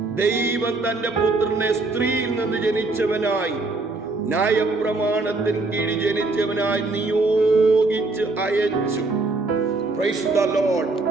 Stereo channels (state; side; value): quieter; left; 3.4 dB